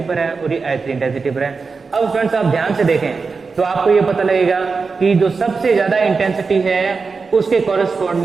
पर है और ये I3 इंटेंसिटी पर है। अब स्टूडेंट्स आप ध्यान से देखें तो आपको ये पता लगेगा कि जो सबसे ज्यादा इंटेंसिटी है उसके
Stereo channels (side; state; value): left; quieter; 4.7 dB